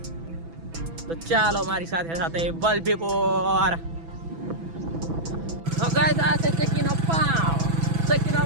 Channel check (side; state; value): left; late; 6.0 ms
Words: તો ચાલો મારી સાથે સાથે વલભીપુર. તો ગાઈસ આ છે ચકીનો પાવ. ચકીનો